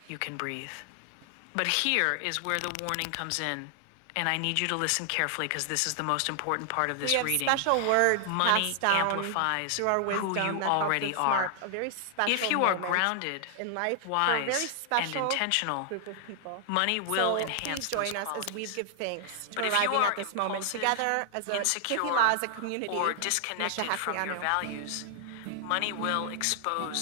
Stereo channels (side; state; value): both; different; correlation 0.00